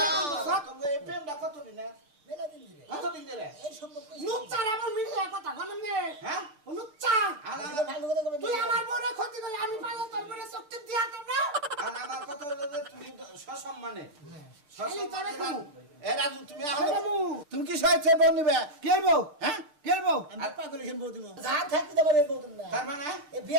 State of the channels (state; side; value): late; left; 6.8 ms